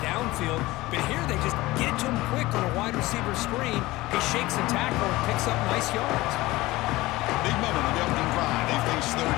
downfield, but here they just get it to him quick on a wide receiver screen. He shakes the tackle and picks up nice yards. Big moment on the opening drive. They face third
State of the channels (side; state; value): right; quieter; 19.2 dB